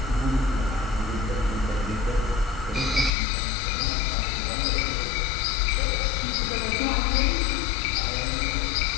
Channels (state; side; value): drops out; right; at 3.1 s